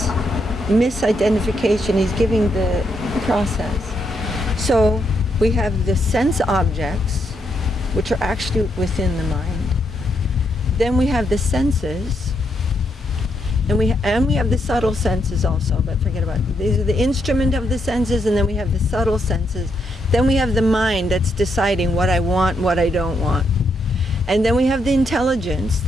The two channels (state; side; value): normal; both; correlation 0.78